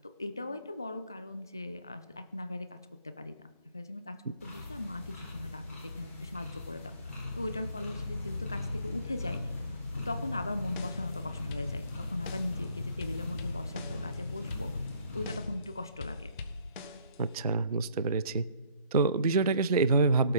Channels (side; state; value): both; inverted; correlation -0.60